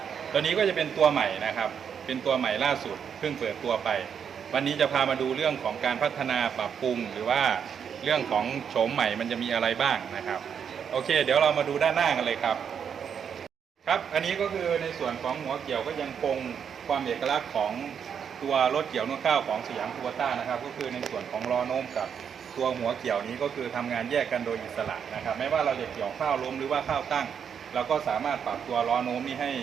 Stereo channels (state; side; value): quieter; left; 7.5 dB